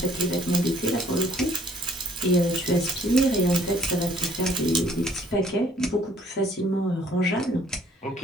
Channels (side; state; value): both; normal; correlation 0.59